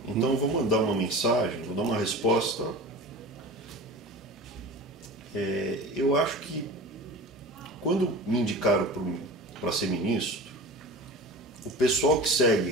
Então eu vou mandar uma mensagem, vou dar uma resposta. Eu acho que quando me indicaram para ser ministro, o pessoal que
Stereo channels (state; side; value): normal; both; correlation 0.34